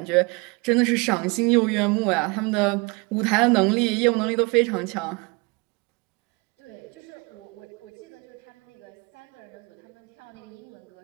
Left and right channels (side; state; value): left; quieter; 28.5 dB